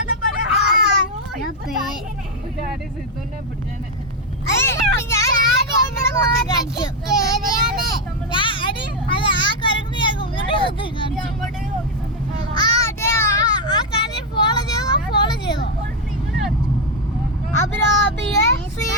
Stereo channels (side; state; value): both; normal; correlation 0.05